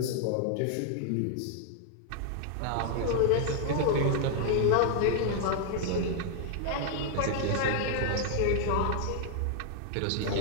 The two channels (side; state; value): both; different; correlation 0.00